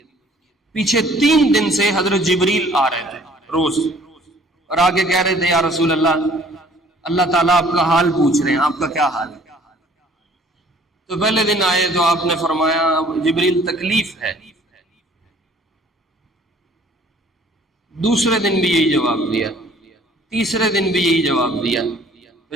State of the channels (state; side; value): normal; both; correlation 0.55